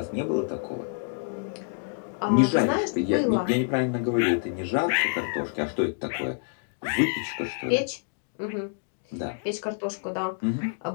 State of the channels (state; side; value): silent; right; digital silence